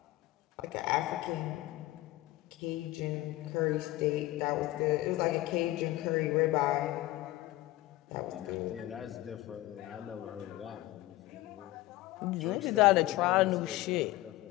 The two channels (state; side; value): quieter; right; 17.4 dB